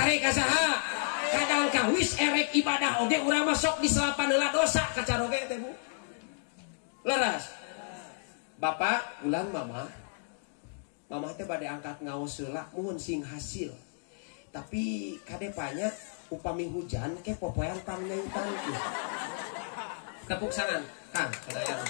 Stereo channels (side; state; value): right; silent; digital silence